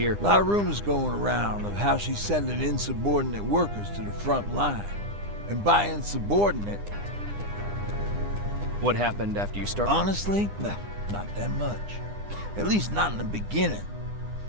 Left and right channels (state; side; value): late; left; 9.9 ms